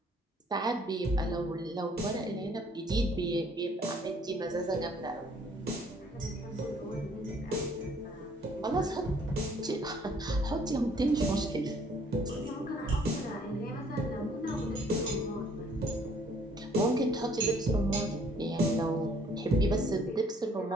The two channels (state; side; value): normal; both; correlation 0.61